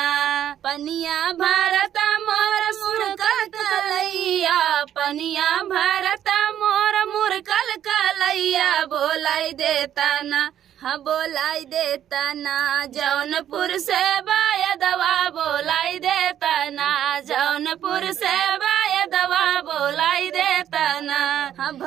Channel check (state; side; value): quieter; left; 10.6 dB